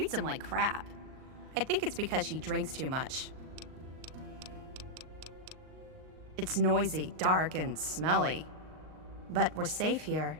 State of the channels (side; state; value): left; late; 38 ms